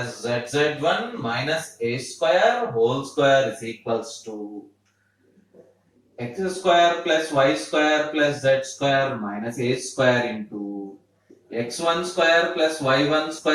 zz1 minus a square whole square is equals to x square plus y square plus z square minus a square into x1 square plus y1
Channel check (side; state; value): both; identical; correlation 1.00